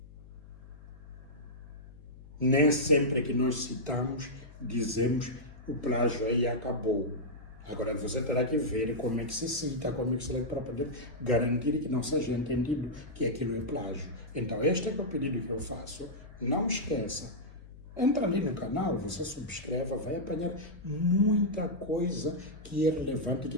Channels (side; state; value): left; noise; hum, 18 dB below the sound